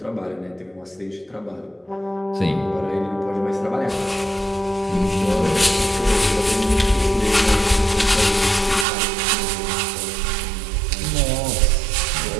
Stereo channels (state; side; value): drops out; left; at 8.8 s